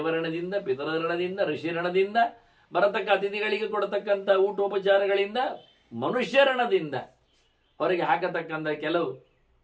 ಪಿತೃಋಣದಿಂದ, ಋಷಿಋಣದಿಂದ, ಬರತಕ್ಕ ಅತಿಥಿಗಳಿಗೆ ಕೊಡತಕ್ಕಂಥ ಊಟೋಪಚಾರಗಳಿಂದ, ಮನುಷ್ಯಋಣದಿಂದ, ಹೊರಗೆ ಹಾಕತಕ್ಕಂಥ ಕೆಲವು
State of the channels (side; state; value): both; identical; correlation 1.00